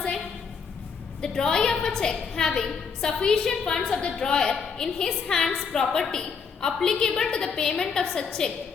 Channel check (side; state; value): right; quieter; 5.8 dB